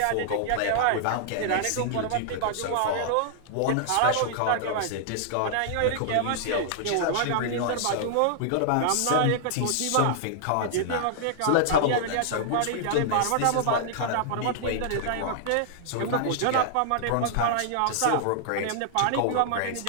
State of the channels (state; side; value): different; both; correlation -0.01